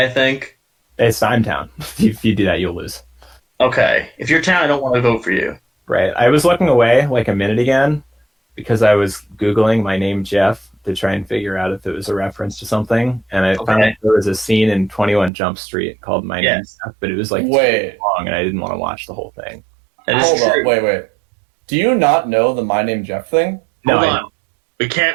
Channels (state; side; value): drops out; left; at 15.3 s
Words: think. It's time town. If you do that, you'll lose. Okay. If you're town, I don't want to vote for you. Right. I was looking away like a minute again, because I was Googling my name Jeff to try and figure out if it was a reference to something, and I found Okay. there was a scene in 21 Jump Street called My Name Yes. Jeff, but it was like too Wait, long, and I didn't want to watch the whole thing. That is hold true. up, wait. Do you not know the My Name Jeff thing? No, Hold I on. know. We can't